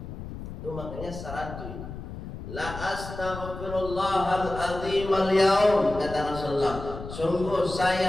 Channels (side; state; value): left; noise; rumble, 10 dB below the sound